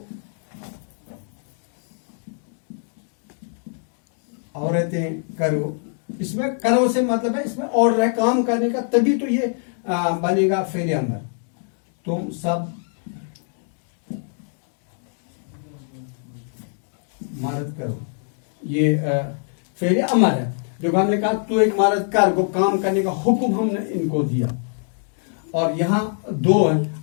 عورتیں کرو. اس میں کرو سے مطلب ہے اس میں آرڈر ہے کام کرنے کا, تبھی تو یہ بنے گا فعل امر. تم سب مرد کرو, یہ فعل امر ہے. جو ہم نے کہا تو ایک مرد کر, وہ کام کرنے کا حکم ہم نے ان کو دیا. اور یہاں دو ہیں.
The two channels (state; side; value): silent; right; 59 dB below the other